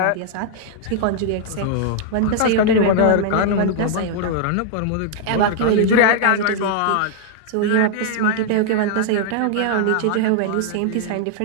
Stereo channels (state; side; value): different; both; correlation -0.01